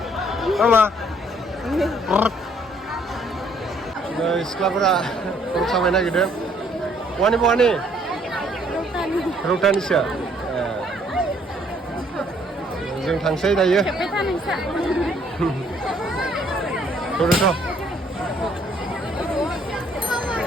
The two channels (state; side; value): normal; both; correlation 0.64